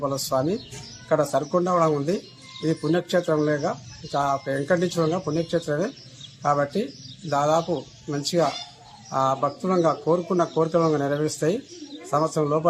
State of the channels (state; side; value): identical; both; correlation 1.00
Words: స్వామి ఇక్కడ సరికొండ కూడా ఉంది. ఇది పుణ్యక్షేత్రం లేక వెంకటేశ్వరంగా పుణ్యక్షేత్రమే కాబట్టి దాదాపు మంచిగా భక్తులంగా కోరుకున్న కోరికలంగా నెరవేరుస్తాయి. సంవత్సరం